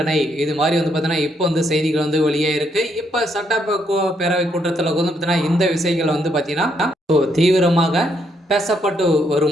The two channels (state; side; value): normal; both; correlation 0.74